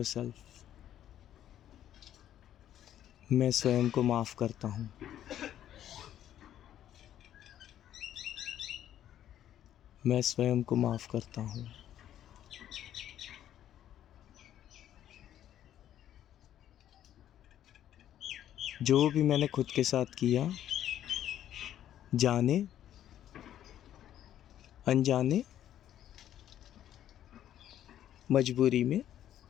मैं स्वयं को माफ़ करता हूँ। मैं स्वयं को माफ़ करता हूँ। जो भी मैंने खुद के साथ किया, जाने अनजाने, मजबूरी में,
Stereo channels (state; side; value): quieter; right; 11.3 dB